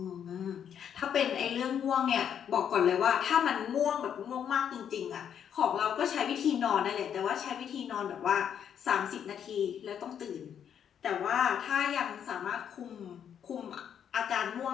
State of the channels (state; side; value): quieter; right; 8.7 dB